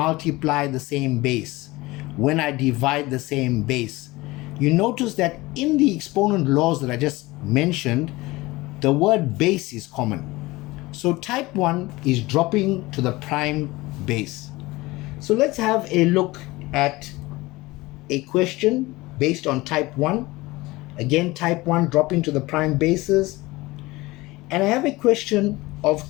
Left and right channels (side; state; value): right; quieter; 20.7 dB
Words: the same base, when I divide the same base, you notice that in the exponent laws that I just mentioned, the word base is common. So type 1 is dropping to the prime base. So let's have a look at a question based on type 1. Again, type 1 dropping to the prime bases. And I have a question of